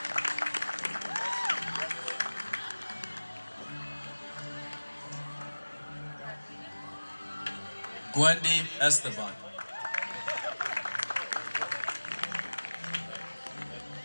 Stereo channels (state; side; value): inverted; both; correlation -1.00